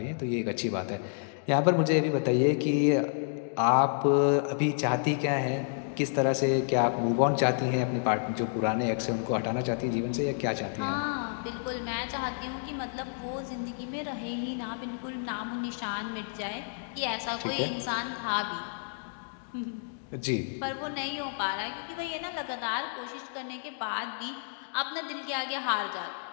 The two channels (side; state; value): right; silent; digital silence